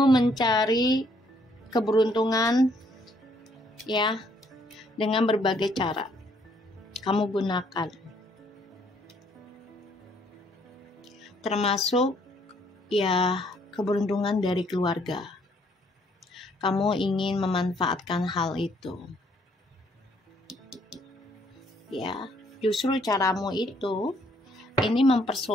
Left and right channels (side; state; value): both; normal; correlation 0.67